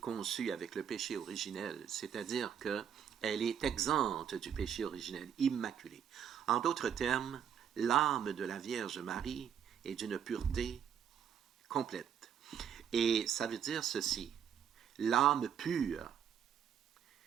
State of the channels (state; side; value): quieter; left; 8.4 dB